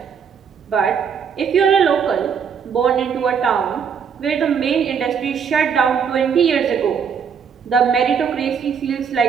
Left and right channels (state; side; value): quieter; left; 7.0 dB